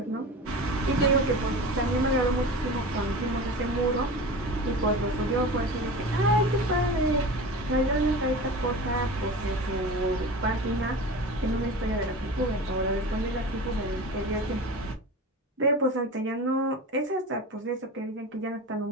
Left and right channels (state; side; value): normal; both; correlation 0.32